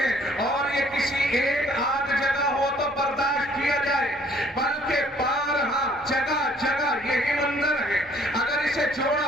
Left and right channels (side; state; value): both; normal; correlation 0.59